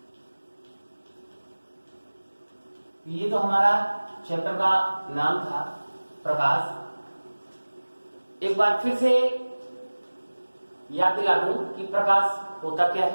ये तो हमारा चैप्टर का नाम था प्रकाश। एक बार फिर से याद दिला दूं कि प्रकाश होता क्या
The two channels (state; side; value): inverted; both; correlation -1.00